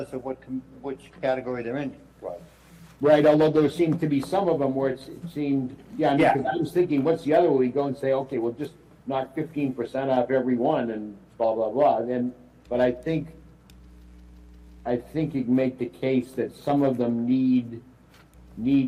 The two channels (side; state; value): both; identical; correlation 1.00